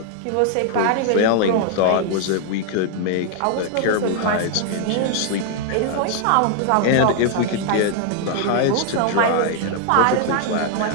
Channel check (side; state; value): both; different; correlation 0.00